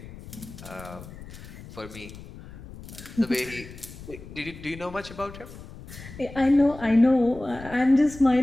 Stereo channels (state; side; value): noise; left; rumble, 15 dB below the sound